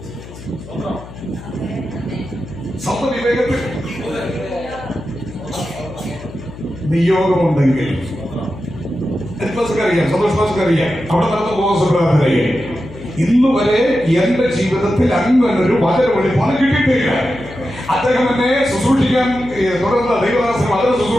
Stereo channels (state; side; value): noise; left; hum, 15 dB below the sound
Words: സ്വന്തം വിവേകത്തിൽ നിയോഗമുണ്ടെങ്കിൽ അറിയാം, സന്തോഷറിയാം, അവിടെ നടന്ന ബോധറിയാം. ഇന്ന് വരെ എന്റെ ജീവിതത്തിൽ അങ്ങനൊരു വചന വെളിപ്പാട് കിട്ടിയിട്ടില്ല. അദ്ദേഹം എന്നെ ശുശ്രൂഷിക്കാൻ തുടർന്ന് ദൈവദാസൻ വചന